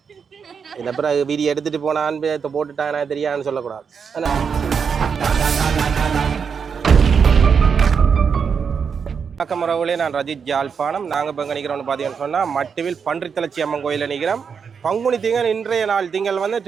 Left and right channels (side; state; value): left; quieter; 6.3 dB